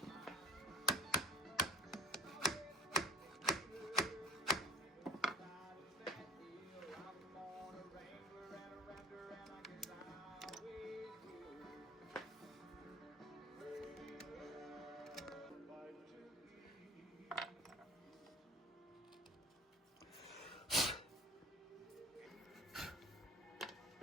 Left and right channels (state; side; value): normal; both; correlation 0.40